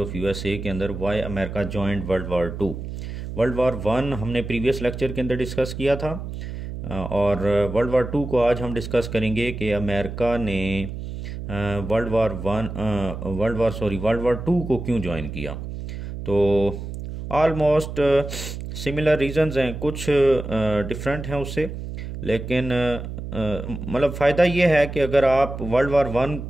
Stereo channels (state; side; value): noise; right; hum, 8 dB below the sound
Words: यूएसए के अंदर why America joined World War 2। World War 1 हमने प्रीवियस लेक्चर के अंदर डिस्कस किया था। और वर्ल्ड वार 2 को आज हम डिस्कस करेंगे कि अमेरिका ने वर्ल्ड वार 2 को क्यों ज्वाइन किया। तो ऑलमोस्ट सिमिलर रीजंस हैं, कुछ डिफरेंट हैं उससे, लेकिन मतलब फ़ायदा ये है कि अगर आप वर्ल्ड वार 1